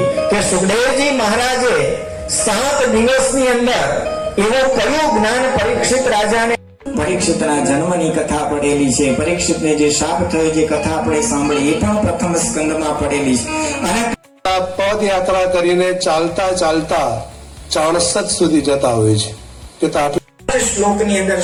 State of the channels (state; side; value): identical; both; correlation 1.00